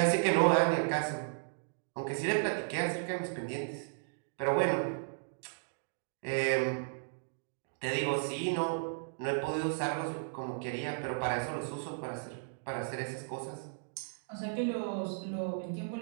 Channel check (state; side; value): silent; left; digital silence